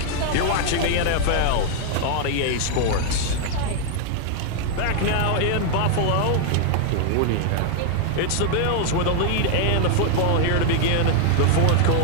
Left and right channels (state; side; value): different; both; correlation 0.00